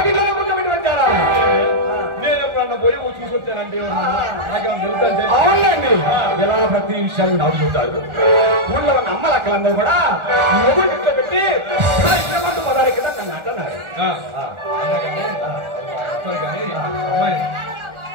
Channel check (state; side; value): late; left; 1.4 ms